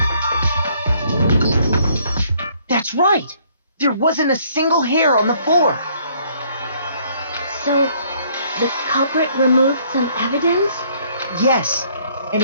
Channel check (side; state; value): both; inverted; correlation -0.64